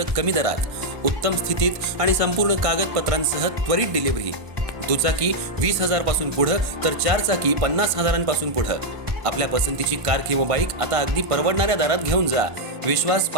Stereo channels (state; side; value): late; left; 1.5 ms